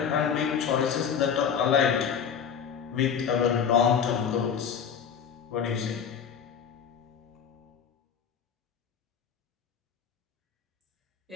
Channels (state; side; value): quieter; right; 7.4 dB